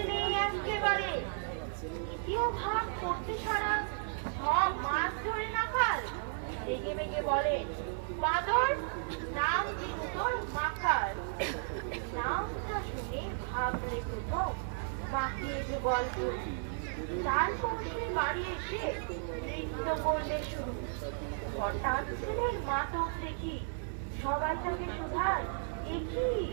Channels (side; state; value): left; silent; digital silence